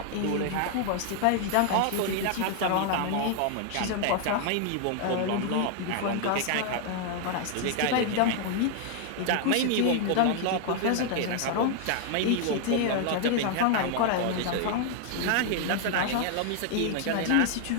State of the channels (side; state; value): both; different; correlation 0.00